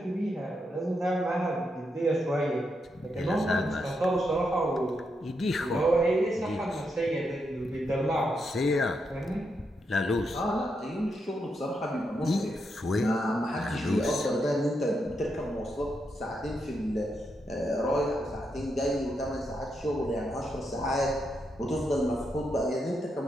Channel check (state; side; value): normal; both; correlation 0.82